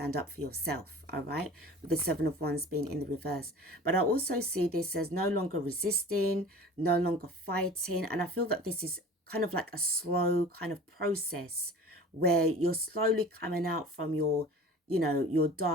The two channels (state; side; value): normal; both; correlation 0.41